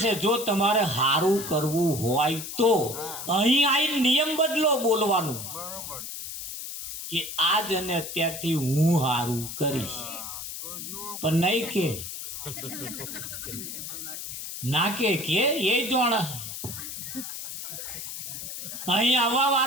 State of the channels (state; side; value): noise; left; hiss, 8 dB below the sound